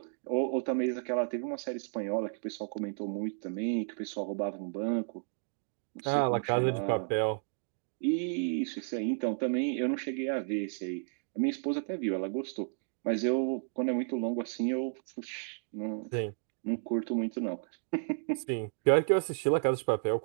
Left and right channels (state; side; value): silent; left; digital silence